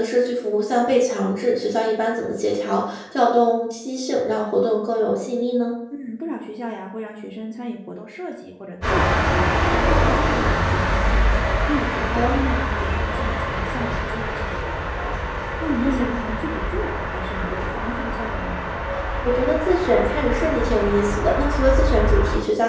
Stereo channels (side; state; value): both; identical; correlation 1.00